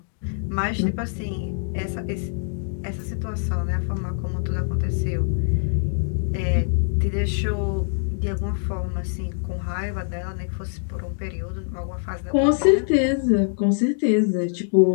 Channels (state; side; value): silent; right; digital silence